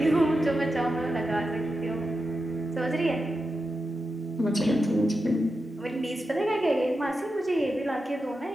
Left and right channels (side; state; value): both; normal; correlation 0.90